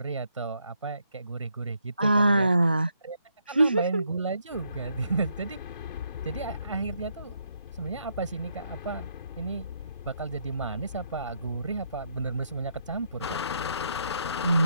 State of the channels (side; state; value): both; inverted; correlation -0.75